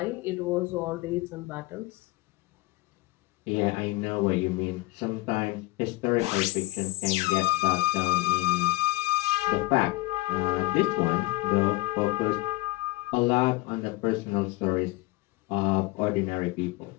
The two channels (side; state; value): right; quieter; 21.0 dB